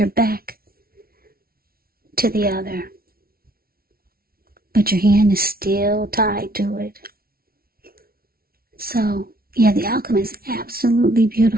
back to the other. But your hand is still tied to it. So, yeah, the outcome is absolutely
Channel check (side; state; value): left; late; 0.44 ms